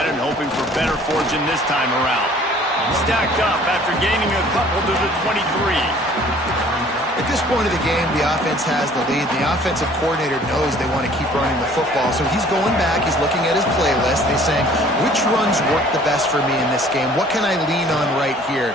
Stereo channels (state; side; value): normal; both; correlation 0.53